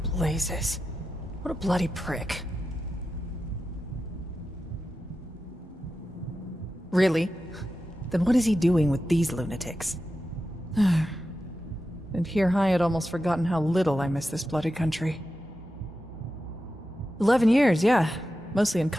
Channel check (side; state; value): both; normal; correlation 0.91